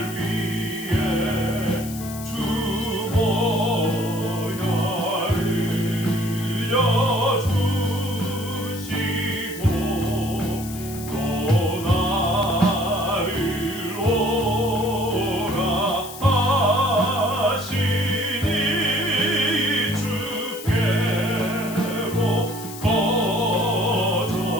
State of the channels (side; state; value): left; noise; hiss, 13 dB below the sound